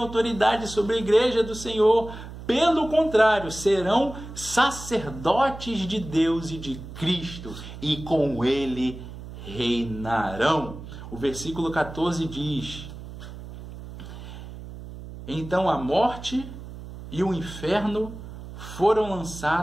sobre a igreja do Senhor. Pelo contrário, serão sacerdotes de Deus e de Cristo, e com ele reinarão. O versículo 14 diz: então a morte e o inferno foram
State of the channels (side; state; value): right; noise; hum, 13 dB below the sound